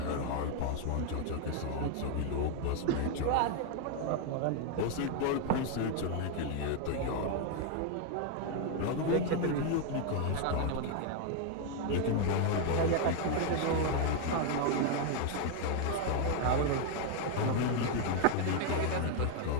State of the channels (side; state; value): both; different; correlation 0.00